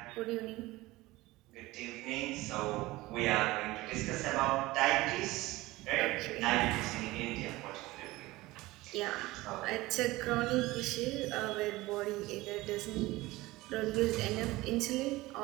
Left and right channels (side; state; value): left; quieter; 19.4 dB